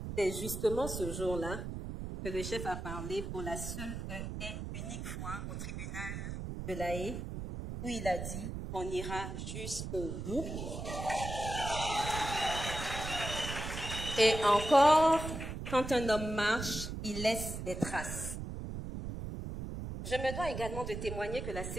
C'est justement ce jour-là que le chef a parlé pour la seule et unique fois au tribunal de La Haye, où il a dit qu'on ira jusqu'au bout. Et encore, quand un homme marche, il laisse des traces. Je me dois également de témoigner que la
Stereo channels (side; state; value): right; noise; rumble, 6 dB below the sound